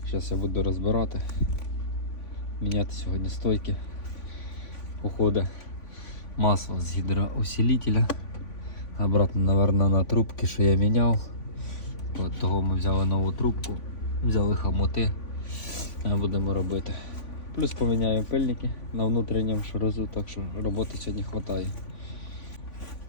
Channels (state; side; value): late; right; 3.5 ms